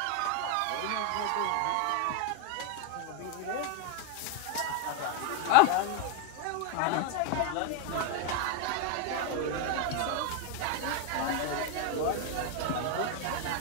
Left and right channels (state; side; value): different; both; correlation 0.01